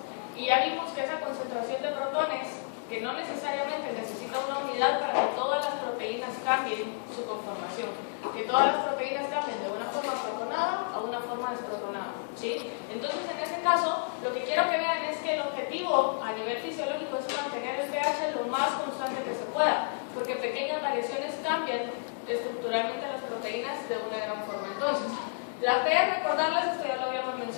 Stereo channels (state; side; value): silent; right; digital silence